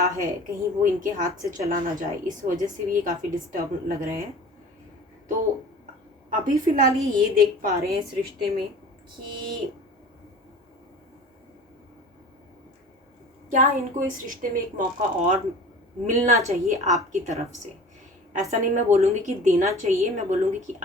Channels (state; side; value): normal; both; correlation 0.41